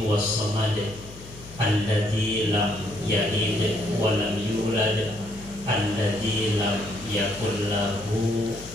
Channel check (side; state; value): left; noise; hum, 17 dB below the sound